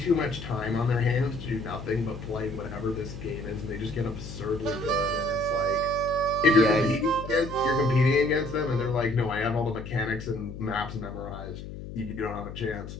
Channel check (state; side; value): noise; left; hum, 10 dB below the sound